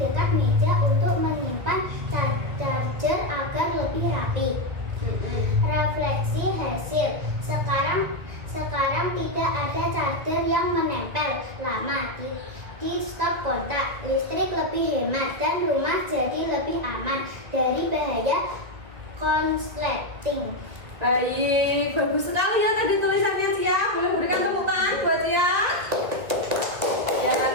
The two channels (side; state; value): left; late; 2.1 ms